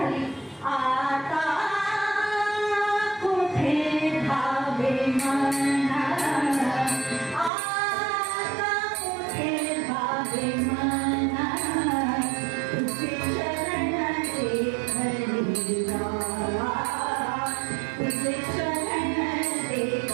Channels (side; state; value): left; drops out; at 7.5 s